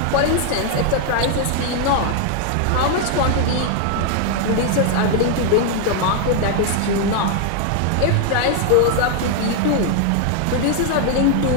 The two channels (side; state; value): both; different; correlation 0.00